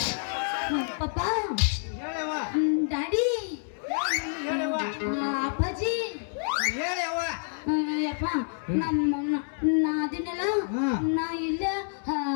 ಪಪ್ಪ ಹೇಳವ್ವ ಡ್ಯಾಡಿ ಹೇಳವ್ವ ಅಪ್ಪಾಜಿ ಹೇಳವ್ವ ಯಪ್ಪ ನಾ ಅದಿನೆಲ್ಲ ನಾ ಇಲ್ಲ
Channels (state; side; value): silent; right; digital silence